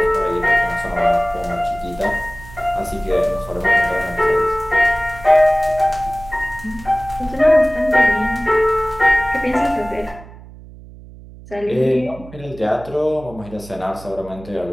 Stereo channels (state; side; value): noise; right; hum, 18 dB below the sound